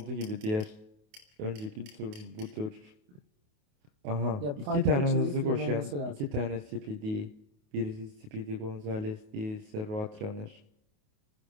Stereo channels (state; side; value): late; left; 28 ms